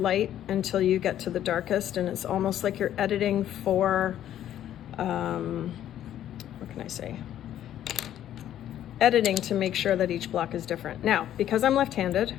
until you get to the darkest, and it's almost like you're editing for, what can I say? Editing to make sure that each block is different. Now, because I'm left-handed,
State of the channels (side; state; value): right; quieter; 11.5 dB